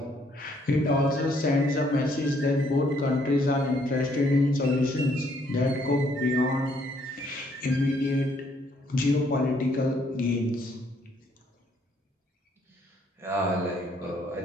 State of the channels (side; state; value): both; normal; correlation 0.68